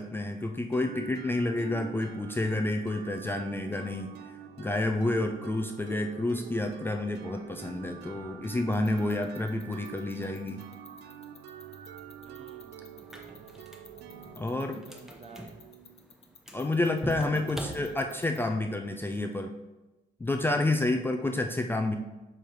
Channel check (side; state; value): both; normal; correlation 0.80